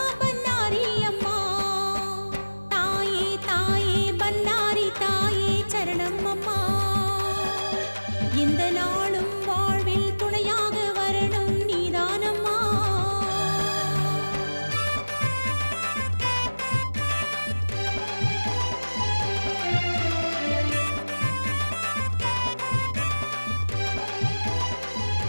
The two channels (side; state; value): both; inverted; correlation -1.00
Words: பன்னாரி அம்மா. தாயே தாயே பன்னாரி தாயே சரணம் அம்மா. எந்த நாளும் வாழ்வில் துணையாக வரணும் நீதானம்மா.